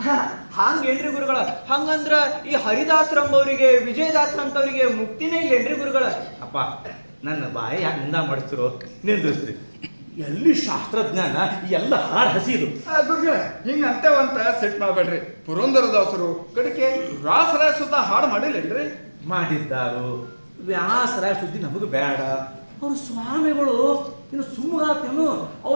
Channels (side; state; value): both; inverted; correlation -1.00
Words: ಹಂಗೇನ್ರಿ ಗುರುಗಳ? ಹಂಗಂದ್ರ ಈ ಹರಿದಾಸರಂಬವ್ರಿಗೆ ವಿಜಯದಾಸರಂತವ್ರಿಗೆ ಮುಕ್ತಿನೇ ಇಲ್ಲೇನ್ರಿ ಗುರುಗಳ? ಅಪ್ಪ ನನ್ನ ಬಾಯಿ ಯಾಕೆ ನಿಂದ ಮಾಡಿಸ್ತಿರೋ ನಿಂದ್ರಿಸ್ರಿ. ಎಲ್ಲಿ ಶಾಸ್ತ್ರಜ್ಞಾನ, ಎಲ್ಲ ಹಾಡು ಹಸಿದು. ಗುರುಗಳ ಹಿಂಗ ಅಂತೇವಂತ ಸೆಟ್ ಮಾಡ್ಬೇಡ್ರಿ. ಪುರಂದರದಾಸರು ಕಡೆಗೆ ವ್ಯಾಸರಾಯ ಸುತ್ತ ಹಾಡು ಮಾಡಿಲ್ಲೇನ್ರಿ? ಮಾಡಿದ್ದಾರು. ವ್ಯಾಸರ ಸುದ್ದಿ ನಮಗೆ ಬೇಡ. ಅವ್ರು ಸ್ವಾಮಿಗಳು ಇನ್ನು ಸುಮ್ಮಗಾತೇನು,